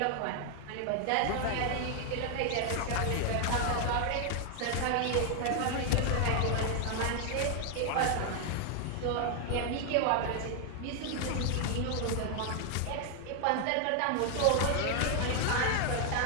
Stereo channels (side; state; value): both; different; correlation 0.00